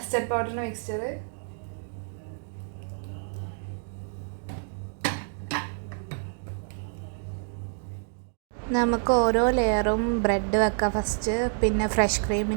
പൗഡറിൻ്റെ മിക്സ്ചർ നമുക്ക് ഓരോ ലെയറും ബ്രെഡ് വെക്കാം ഫസ്റ്റ്, പിന്നെ ഫ്രഷ്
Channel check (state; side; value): silent; left; digital silence